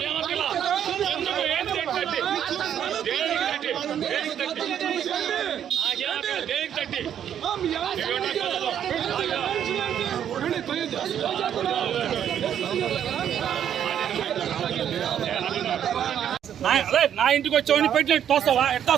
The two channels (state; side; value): quieter; left; 9.5 dB